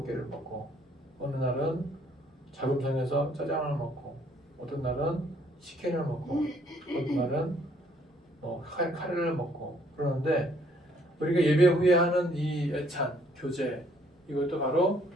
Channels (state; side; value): normal; both; correlation 0.65